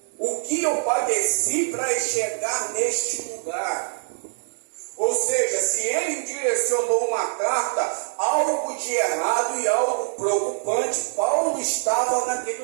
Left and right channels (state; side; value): silent; left; digital silence